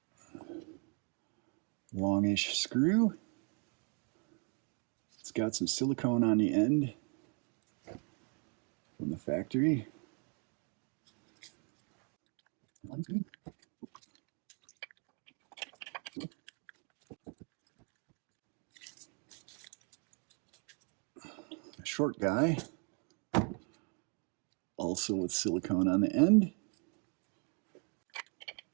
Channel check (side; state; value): left; quieter; 38.1 dB